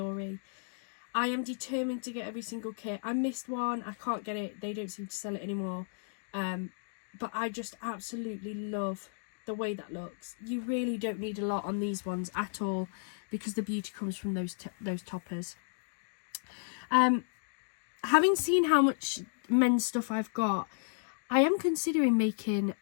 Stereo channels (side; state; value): right; silent; digital silence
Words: I am determined to get every single kit. I missed one. I can't get it. They don't seem to sell it anymore. But I just absolutely love the way that looks. You really don't need a lot on these ones at all, because the beauty comes from those toppers. Having seen how much men's stuff I've got, I am considering making